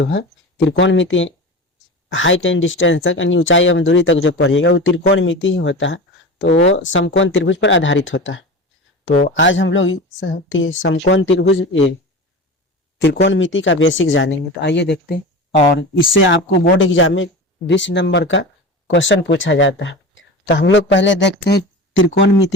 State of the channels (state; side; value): normal; both; correlation 0.30